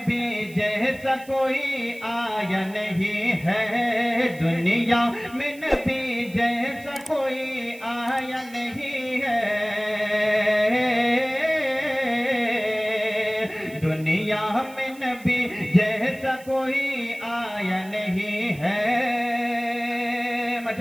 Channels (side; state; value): right; noise; hiss, 22 dB below the sound